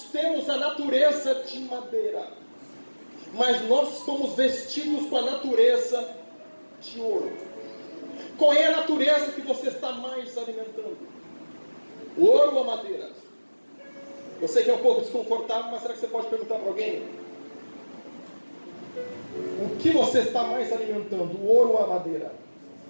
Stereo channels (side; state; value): both; inverted; correlation -1.00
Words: temos a natureza de madeira, mas nós somos vestidos com a natureza de ouro. Qual é a natureza que você está mais alimentando? O ouro ou a madeira? Eu sei que é um pouco desconfortável, mas será que você pode perguntar para alguém? O que você está mais alimentando? O ouro ou a madeira?